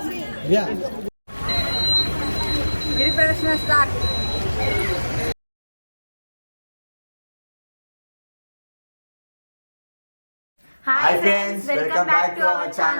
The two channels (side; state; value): both; inverted; correlation -1.00